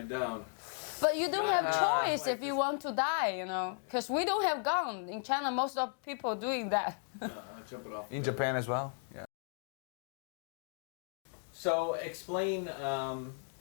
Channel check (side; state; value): right; silent; 54 dB below the other